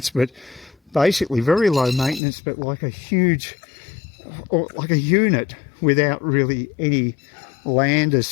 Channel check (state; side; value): drops out; right; at 2.2 s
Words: but basically very low maintenance, but like a huge, or like a unit without really any land as